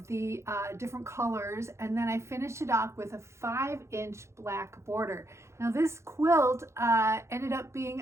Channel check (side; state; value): left; late; 0.13 ms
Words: the different colors, and then I finished it off with a 5-inch black border. Now this quilt ended up